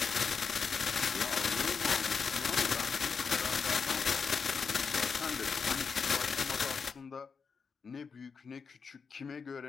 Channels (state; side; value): quieter; right; 5.5 dB